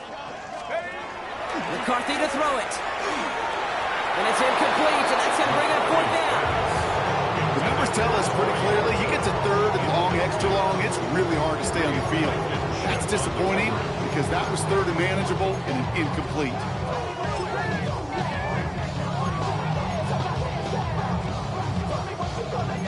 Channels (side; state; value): both; identical; correlation 1.00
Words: McCarthy to throw it. And it's incomplete, and that's going to bring up 4th down. The numbers tell us pretty clearly, you get to 3rd and long, extra long, it's really hard to stay on the field. That's disappointing because that was 3rd and manageable and an incomplete.